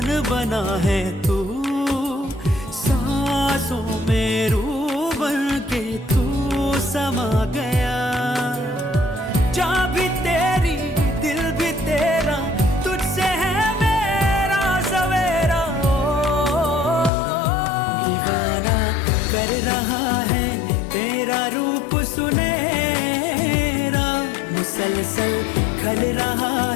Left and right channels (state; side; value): drops out; right; at 17.1 s